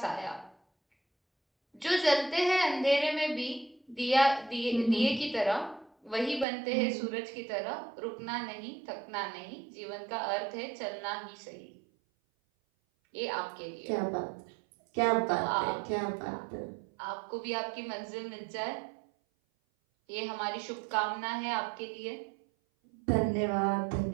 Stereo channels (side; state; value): left; drops out; at 6.5 s